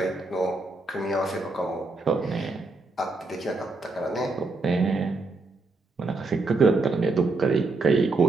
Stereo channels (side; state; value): left; quieter; 3.4 dB